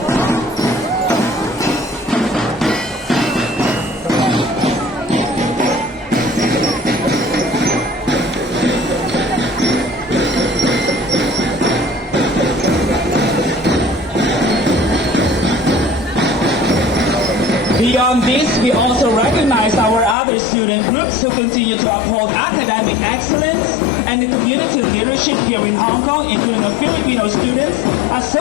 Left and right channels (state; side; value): drops out; right; at 20.2 s